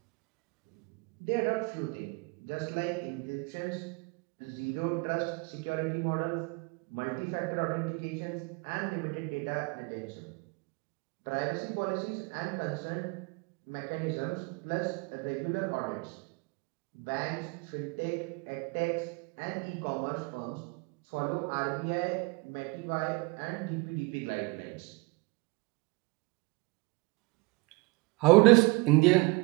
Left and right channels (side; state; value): left; quieter; 26.6 dB